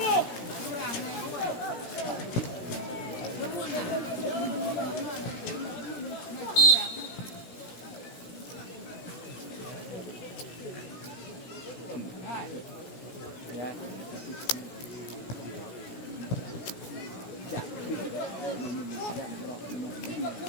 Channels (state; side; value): late; right; 17 ms